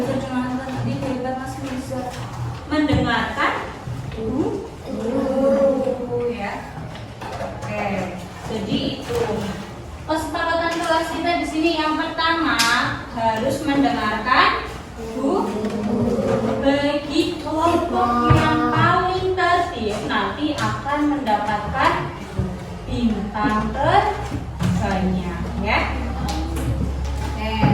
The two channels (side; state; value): both; identical; correlation 1.00